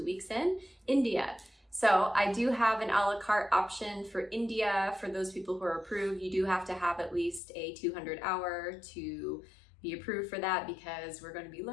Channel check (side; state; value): right; drops out; at 7.4 s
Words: weeks in India. So I do have an a la carte option for India. For those people who are approved, you do have to have at least a 200 hour to be approved for that, because we're going to be